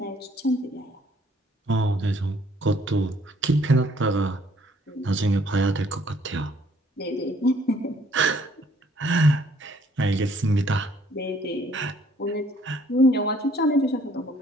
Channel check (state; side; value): normal; both; correlation 0.62